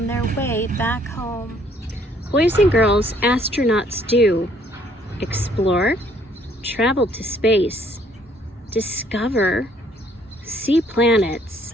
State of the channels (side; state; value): both; normal; correlation 0.63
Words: their way back home. Boys and girls, astronauts do explore, travel to space, discover, see planets,